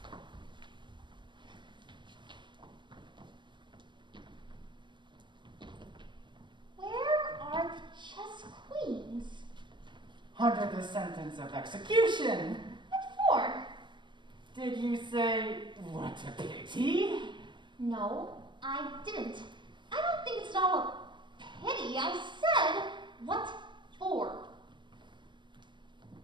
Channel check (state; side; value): late; left; 0.22 ms